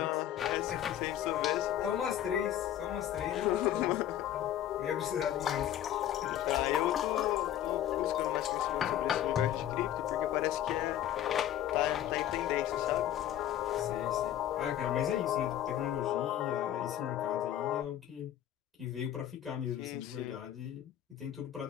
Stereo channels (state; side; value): quieter; right; 11.6 dB